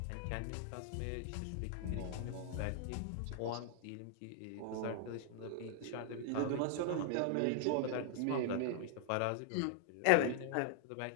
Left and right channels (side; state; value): both; different; correlation 0.00